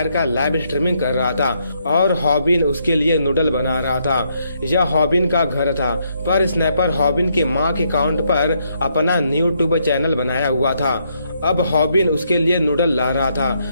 का लाइव स्ट्रीमिंग कर रहा था और हॉबिन उसके लिए नूडल बना रहा था। यह हॉबिन का घर था, पर स्नैपर हॉबिन के माँ के अकाउंट पर अपना यूट्यूब चैनल बनाया हुआ था। अब हॉबिन उसके लिए नूडल ला रहा था,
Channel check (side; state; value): both; inverted; correlation -0.75